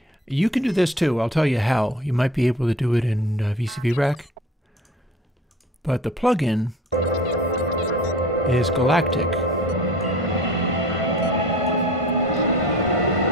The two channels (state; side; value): normal; both; correlation 0.42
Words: You can do this too. I'll tell you how. You might be able to do it in VCV Rack. But the plugin is Galactic.